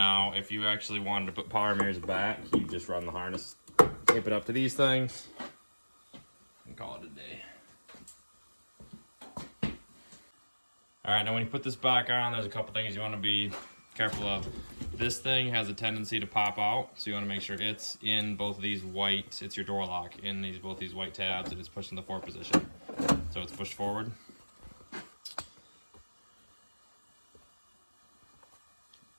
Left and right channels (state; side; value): inverted; both; correlation -1.00